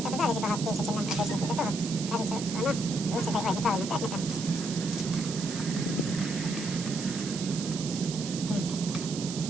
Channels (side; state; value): right; noise; hiss, 8 dB below the sound